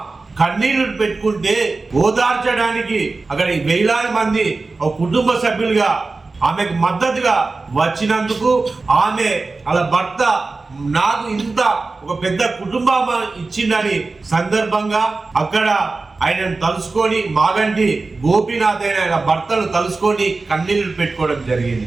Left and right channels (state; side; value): quieter; left; 3.7 dB